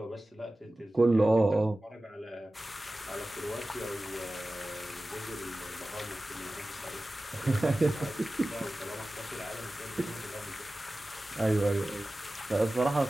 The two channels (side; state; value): both; normal; correlation 0.96